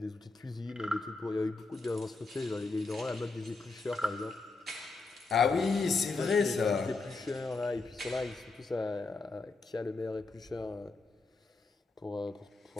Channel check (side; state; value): right; quieter; 3.7 dB